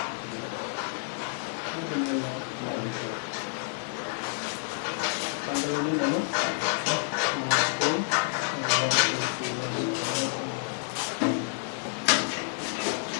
Tanggalin yun, ano?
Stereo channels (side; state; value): right; silent; 59 dB below the other